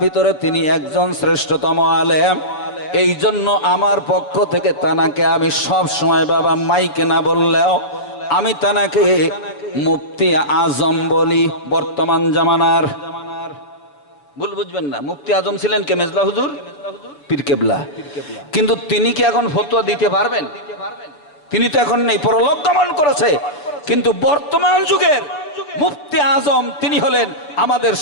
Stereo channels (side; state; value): right; late; 6.8 ms